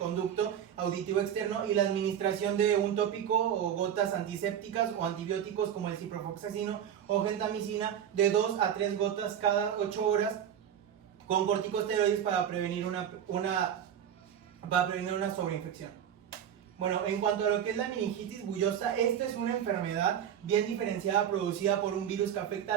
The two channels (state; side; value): quieter; left; 9.4 dB